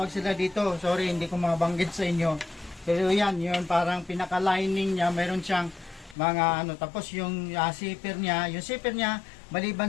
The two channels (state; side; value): drops out; right; at 6.2 s